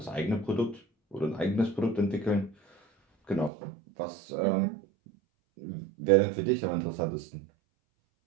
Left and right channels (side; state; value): left; drops out; at 3.5 s